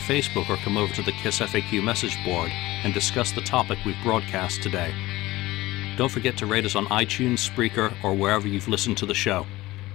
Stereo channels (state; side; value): quieter; right; 18.5 dB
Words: or come over to the KissFAQ message board and discuss the topic we've broadcast today. Don't forget to rate us on iTunes, Spreaker, or wherever you've listened to the show.